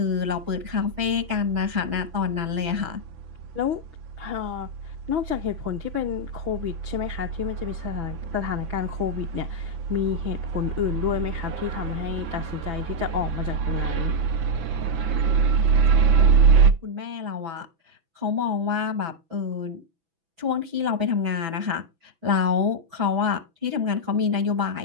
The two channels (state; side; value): late; left; 6.0 ms